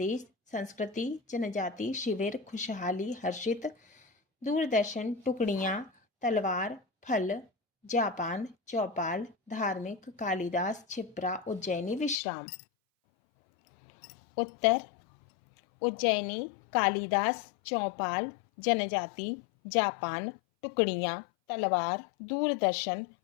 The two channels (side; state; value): right; drops out; at 12.2 s